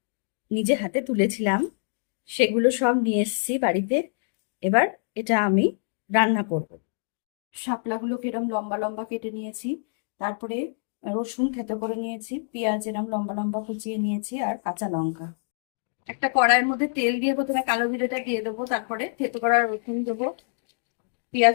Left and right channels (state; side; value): silent; right; digital silence